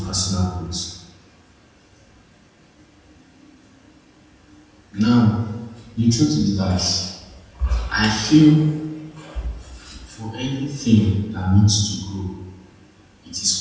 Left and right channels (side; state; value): both; identical; correlation 1.00